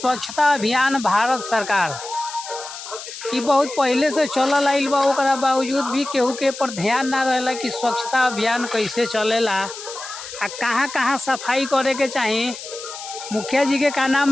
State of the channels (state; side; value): noise; left; hiss, 11 dB below the sound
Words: अभियान भारत सरकार ई बहुत पहले से चलल आइल बा, ओकरा बावजूद भी केहू के पर ध्यान ना रहेला कि स्वच्छता अभियान कैसे चलेला आ कहाँ कहाँ सफाई करे के चाही। मुखिया जी के का नाम